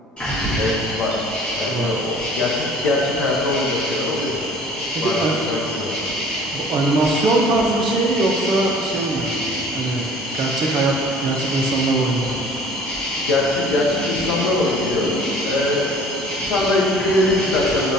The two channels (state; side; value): normal; both; correlation 0.49